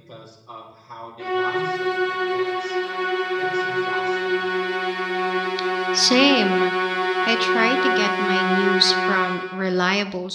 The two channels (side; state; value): both; identical; correlation 1.00